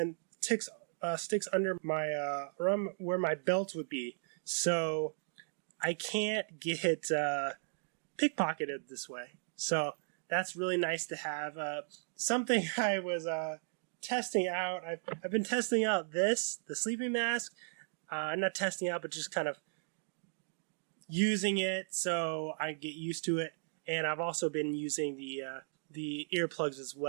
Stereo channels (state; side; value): silent; left; digital silence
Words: sticks under my around where my belt would be, so I can't get pickpocketed this way. So that's really nice to have. Something I was testing out. I've been testing out the sleeping mask. Not testing out, but just kind of using it so I get used to it. And I've also been using the earplugs as